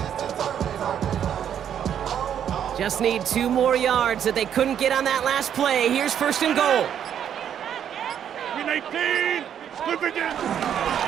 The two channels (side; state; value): left; quieter; 9.2 dB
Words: Just need 2 more yards that they couldn't get on that last play. Here's 1st and goal. Win 18. Split again.